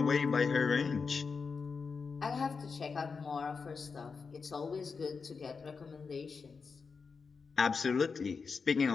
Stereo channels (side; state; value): right; quieter; 5.1 dB